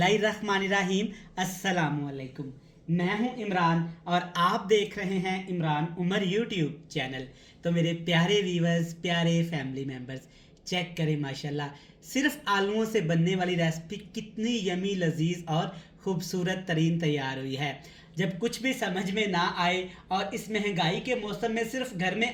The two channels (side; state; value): both; identical; correlation 1.00